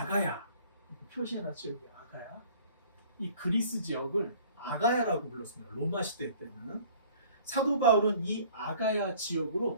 표시해놨죠 여기 아가야. 이 그리스 지역을 아가야라고 불렀습니다. 로마 시대 때는. 사도 바울은 이 아가야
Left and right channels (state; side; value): inverted; both; correlation -0.51